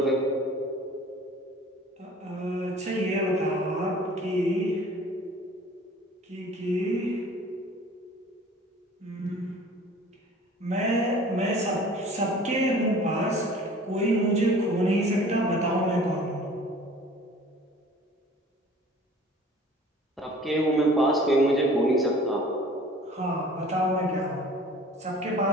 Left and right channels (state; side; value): normal; both; correlation 0.47